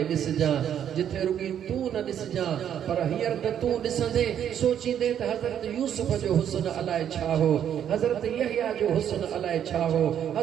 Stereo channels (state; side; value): quieter; left; 9.5 dB